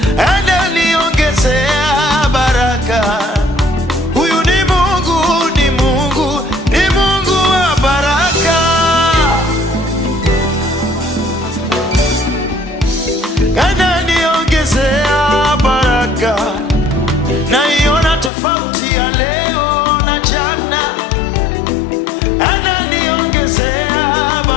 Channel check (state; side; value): drops out; right; at 18.3 s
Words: Ananiongezea baraka, huyu ni Mungu, ni Mungu, ni Mungu wa baraka. Ananiongezea baraka, naiona tofauti ya leo na jana. Ananiongezea